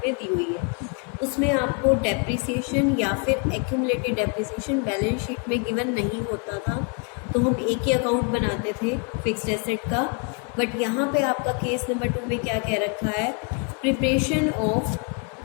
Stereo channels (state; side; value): quieter; right; 37.6 dB